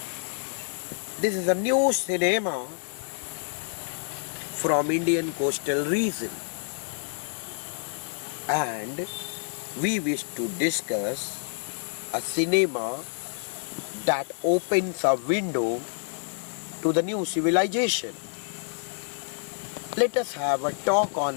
This is a new cinema from Indian coastal region, and we wish to discuss a cinema that opens a window to the new civilization. Let us have a talk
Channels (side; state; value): right; silent; digital silence